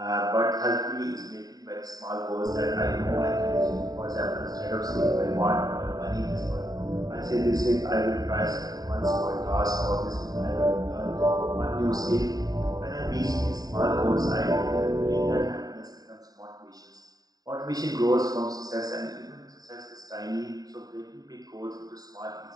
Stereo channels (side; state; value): left; late; 0.18 ms